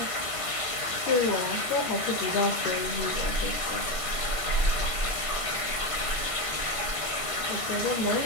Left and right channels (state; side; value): late; right; 1.5 ms